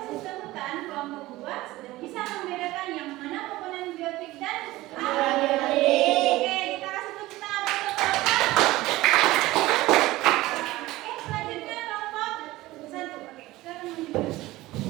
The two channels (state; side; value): quieter; left; 18.1 dB